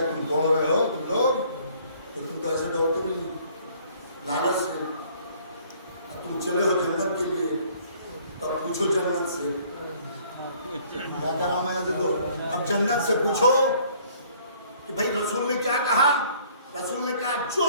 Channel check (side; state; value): both; inverted; correlation -0.58